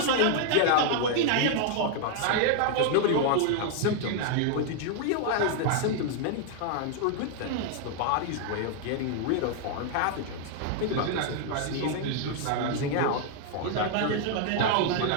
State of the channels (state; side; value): different; both; correlation 0.00